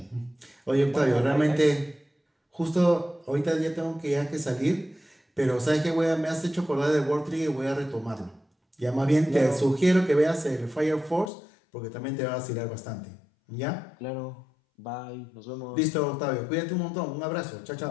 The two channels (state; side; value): drops out; right; at 11.3 s